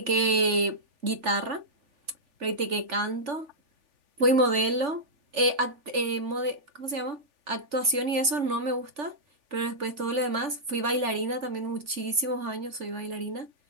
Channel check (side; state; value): left; late; 3.4 ms